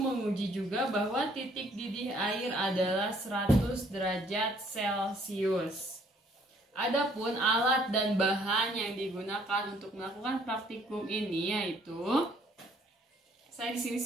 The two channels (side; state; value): both; normal; correlation 0.62